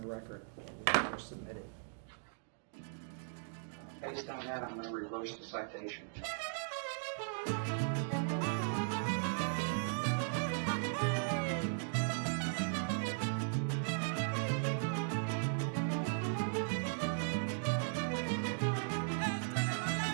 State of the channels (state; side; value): silent; left; digital silence